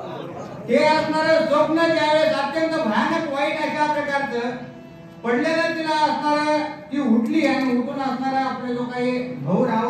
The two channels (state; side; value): identical; both; correlation 1.00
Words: ते असणारं स्वप्न ज्यावेळेस अत्यंत भयानक वाईट अशा प्रकारचं पडलेलं तिला असणारं ती उठली आणि उठून असणारा आपले जो काही भाऊ